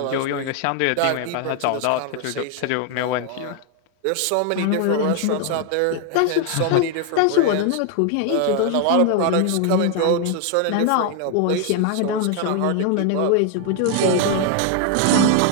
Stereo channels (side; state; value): both; different; correlation 0.01